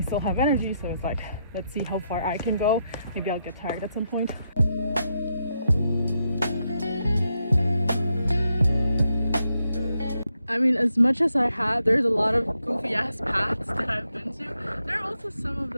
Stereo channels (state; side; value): inverted; both; correlation -0.82